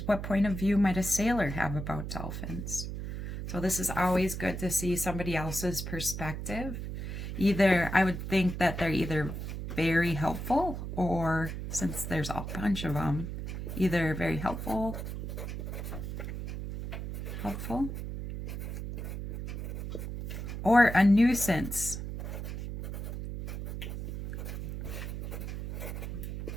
what point of view might a sailor have about dolphins? So this is always good to see somebody else's perspective. Either, I would think that they're either very helpful, or since there's a bunch of them, either very helpful, or a nuisance.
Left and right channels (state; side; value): noise; right; hum, 6 dB below the sound